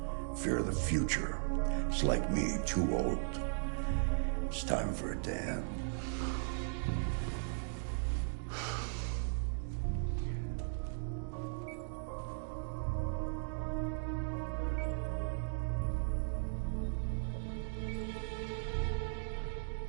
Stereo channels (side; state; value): left; silent; digital silence